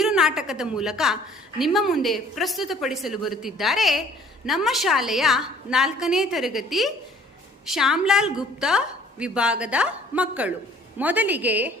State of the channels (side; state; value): both; normal; correlation 0.55